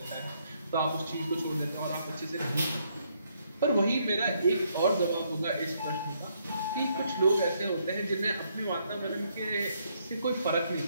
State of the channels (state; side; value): inverted; both; correlation -0.73